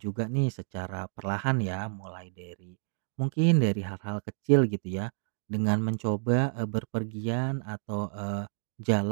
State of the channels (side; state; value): left; silent; digital silence